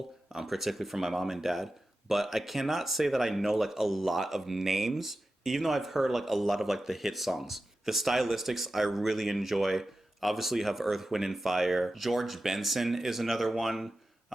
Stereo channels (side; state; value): both; normal; correlation 0.93